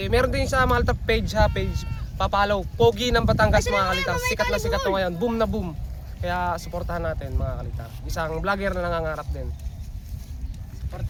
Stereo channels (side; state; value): both; identical; correlation 1.00